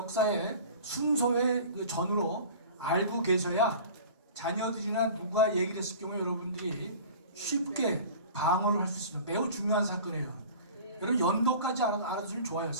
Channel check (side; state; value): both; inverted; correlation -0.41